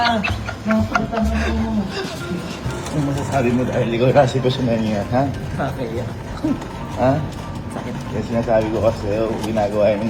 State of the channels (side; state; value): both; identical; correlation 1.00